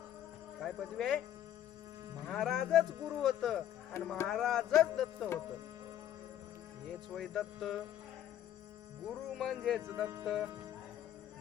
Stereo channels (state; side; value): quieter; right; 11.1 dB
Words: काय पदवी आहे? महाराजच गुरु होत आणि महाराजच दत्त होत. हेच वय दत्त. गुरु म्हणजेच दत्त.